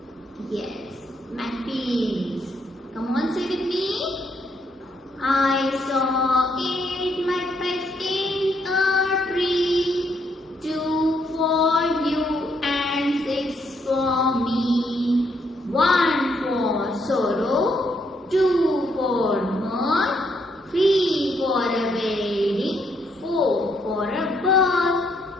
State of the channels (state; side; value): normal; both; correlation 0.73